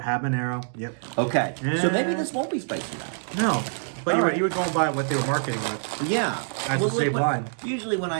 habanero. Yep. Okay, so maybe Yeah. this won't be spicy now. No, but All right. you were going by what they were marketing with. Yeah. That's the same line. Usually when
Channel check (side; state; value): left; silent; digital silence